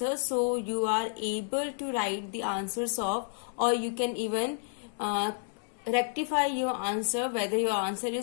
so you are able to write the answers of, or you can even rectify your answer whether your answer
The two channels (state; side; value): silent; right; digital silence